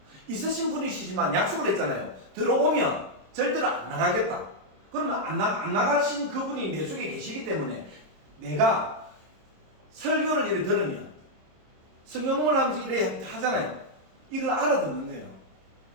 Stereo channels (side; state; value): left; late; 26 ms